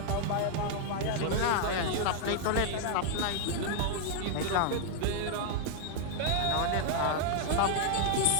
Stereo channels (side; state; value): both; different; correlation 0.00